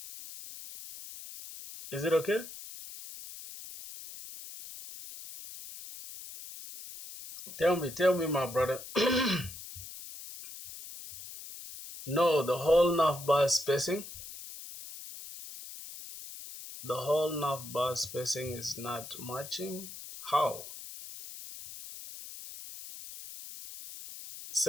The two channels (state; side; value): noise; left; hiss, 13 dB below the sound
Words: Is it okay? Tell me, my brother. No, the whole navbar spacing. The whole navbar spacing is not matching. How?